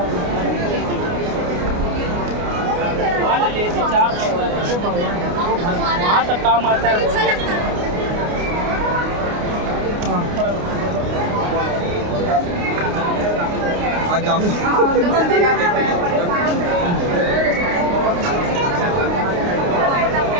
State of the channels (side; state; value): left; late; 29 ms